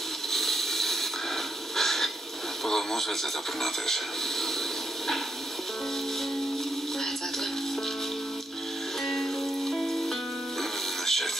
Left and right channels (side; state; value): both; normal; correlation 0.81